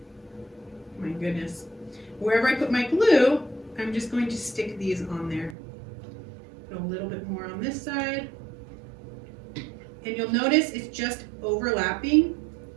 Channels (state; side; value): drops out; left; at 5.6 s